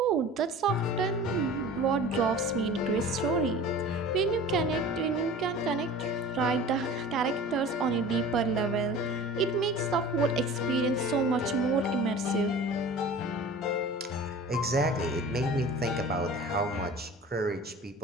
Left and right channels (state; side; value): normal; both; correlation 0.40